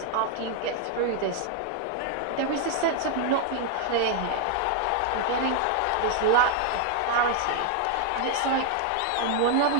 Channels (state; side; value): different; both; correlation 0.00